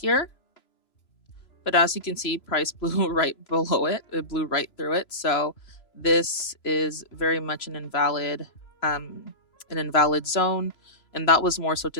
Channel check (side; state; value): right; late; 3.0 ms